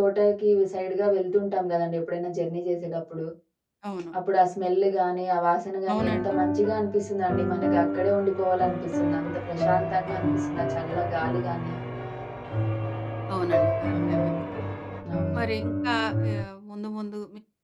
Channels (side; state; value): both; identical; correlation 1.00